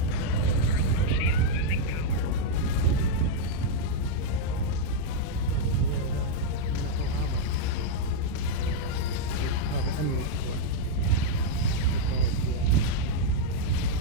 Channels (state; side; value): different; both; correlation -0.02